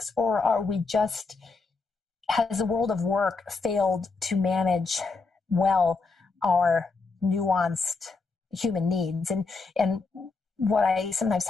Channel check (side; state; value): right; quieter; 4.2 dB